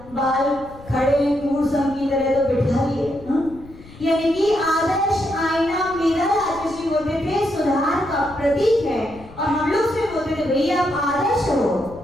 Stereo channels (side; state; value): left; noise; rumble, 19 dB below the sound